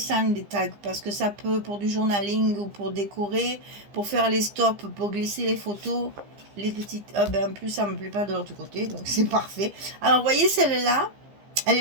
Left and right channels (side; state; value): left; late; 15 ms